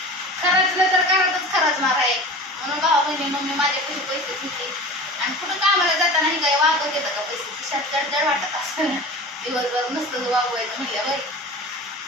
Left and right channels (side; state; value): both; normal; correlation 0.35